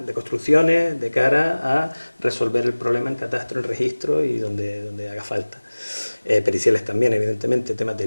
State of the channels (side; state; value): both; inverted; correlation -1.00